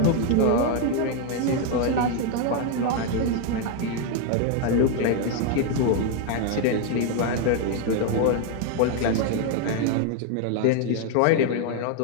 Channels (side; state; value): both; different; correlation 0.01